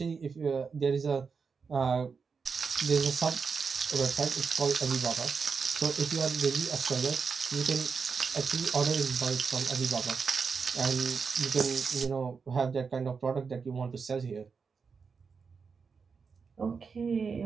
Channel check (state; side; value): quieter; left; 5.4 dB